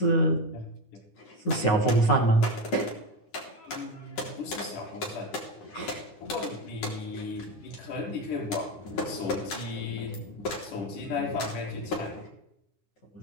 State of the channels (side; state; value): right; late; 10 ms